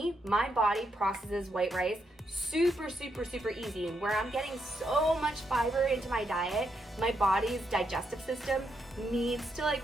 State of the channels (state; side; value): normal; both; correlation 0.80